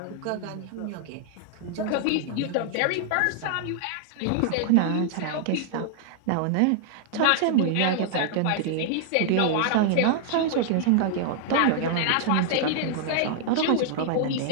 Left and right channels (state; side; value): different; both; correlation -0.01